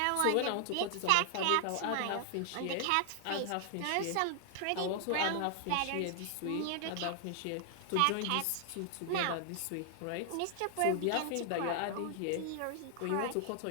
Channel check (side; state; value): both; different; correlation 0.00